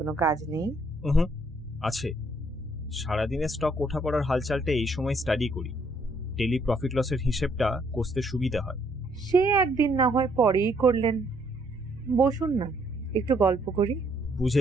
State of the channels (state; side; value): normal; both; correlation 0.68